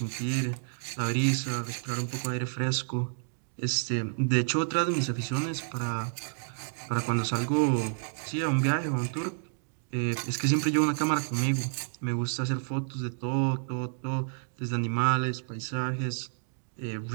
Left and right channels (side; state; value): left; silent; digital silence